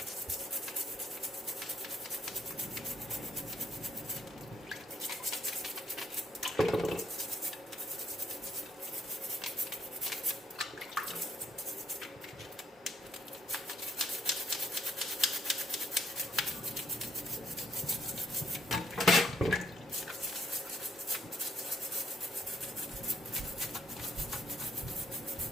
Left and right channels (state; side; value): normal; both; correlation 0.70